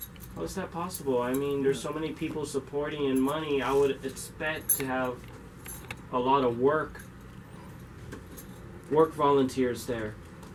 How is that possible? I mean, there's so many people supporting and money. I would expect to have a lot of work volunteers there.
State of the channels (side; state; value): both; identical; correlation 1.00